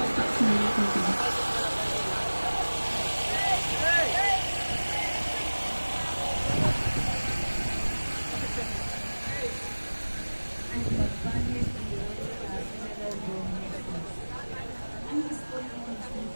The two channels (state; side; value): inverted; both; correlation -1.00